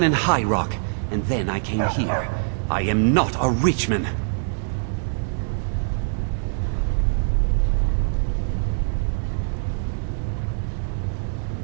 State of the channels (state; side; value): silent; left; digital silence